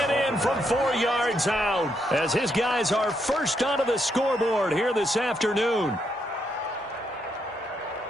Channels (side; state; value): both; normal; correlation 0.78